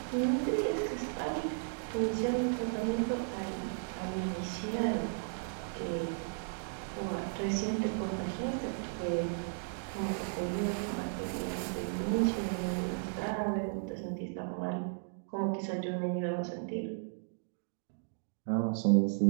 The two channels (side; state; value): left; silent; digital silence